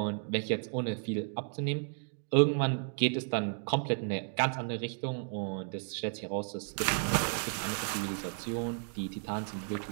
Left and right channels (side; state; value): left; silent; 56 dB below the other